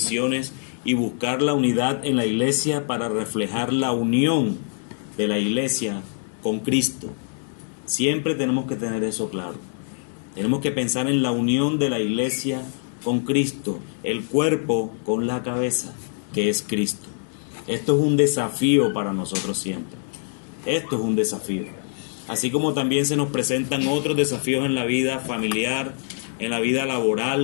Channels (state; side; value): silent; right; digital silence